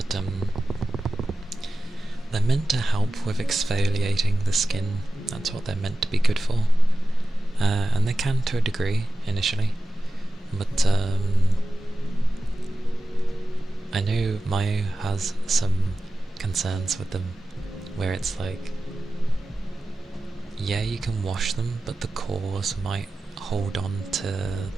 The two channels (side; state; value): both; normal; correlation 0.94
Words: they're meant to help with exfoliating the skin. That's what they're meant to be good for, and they can to a degree initially, but I know Mayu has some concerns with them, where it's like, yeah, you can wash them, but the cores might hold on to